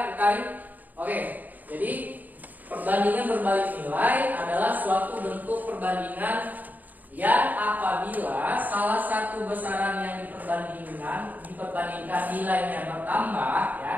Karin. Oke, jadi perbandingan berbalik nilai adalah suatu bentuk perbandingan yang apabila salah satu besaran yang diperbandingkan nilainya bertambah ya,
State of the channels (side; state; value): left; late; 0.083 ms